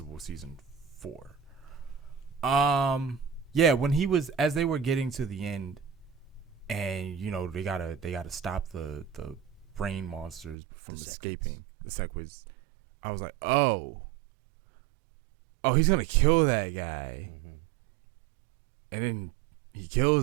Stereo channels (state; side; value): drops out; left; at 10.6 s